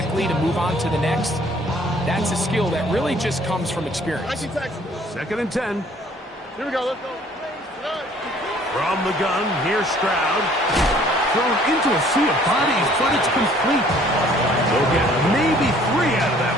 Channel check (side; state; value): both; normal; correlation 0.57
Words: to move on to the next, that's a skill that really just comes from experience. 2nd and 10. Here we go, let's go. From the gun, here's Stroud. Thrown into a sea of bodies, but it's complete. They'll get maybe 3 out of that